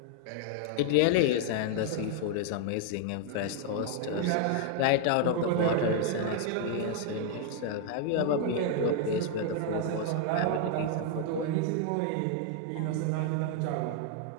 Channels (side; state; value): both; different; correlation 0.00